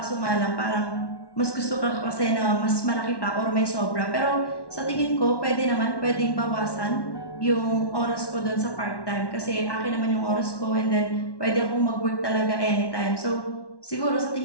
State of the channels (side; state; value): right; late; 1.1 ms